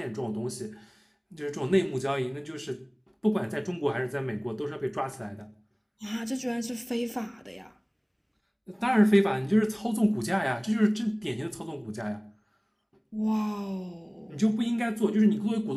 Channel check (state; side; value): identical; both; correlation 1.00